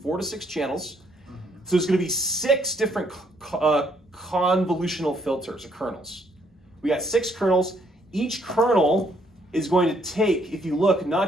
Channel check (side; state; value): both; normal; correlation 0.69